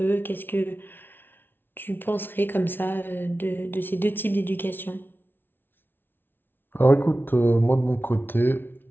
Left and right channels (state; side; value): late; right; 0.10 ms